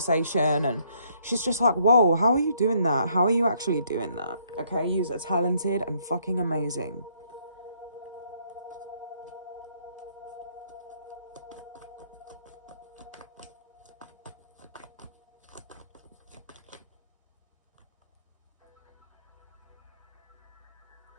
And she's just like, whoa, how are you doing that? How are you actually doing that? Okay, you're talented and fucking amazing.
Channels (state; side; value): inverted; both; correlation -0.69